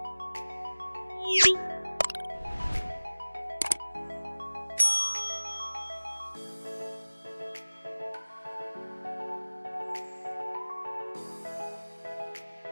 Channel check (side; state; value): both; inverted; correlation -1.00